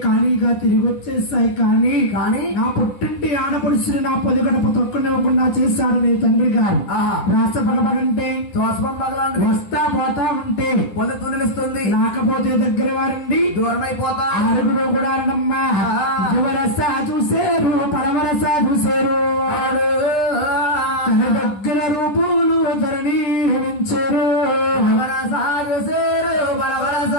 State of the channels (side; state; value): right; late; 10 ms